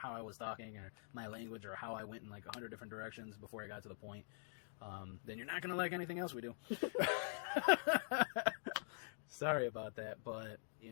I was talking, or my language, or how I went in like 100 different directions before I got to the point, then you're not going to like anything else we do. Sorry about that, but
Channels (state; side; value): silent; right; digital silence